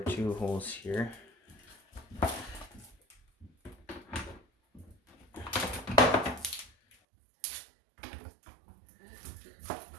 two holes here,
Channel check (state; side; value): drops out; left; at 7.0 s